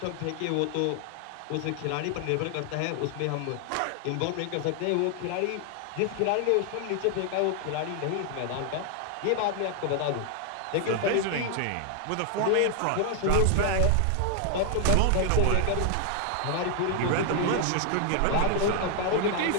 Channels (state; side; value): different; both; correlation 0.00